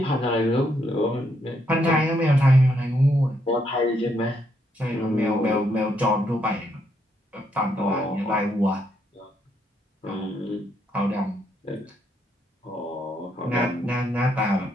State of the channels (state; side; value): normal; both; correlation 0.75